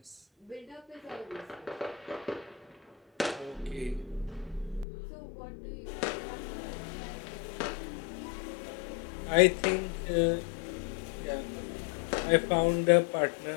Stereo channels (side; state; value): right; drops out; at 4.9 s